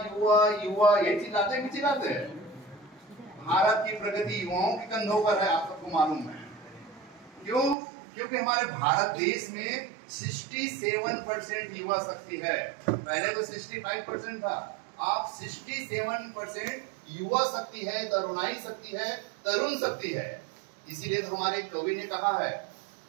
युवा, ये चिल्लाते हैं कि चिल्लाते हैं? भारत की प्रगति युवाओं के कंधों पर है, आप सबको मालूम है। क्यों? क्योंकि हमारे भारत देश में 67% युवा शक्ति है। पहले तो 65% था, आप 67% युवा शक्ति है, तरुणाई शक्ति है, तरुण शक्ति है। इसीलिए तो हमारे कवि ने कहा है,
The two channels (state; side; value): drops out; left; at 7.8 s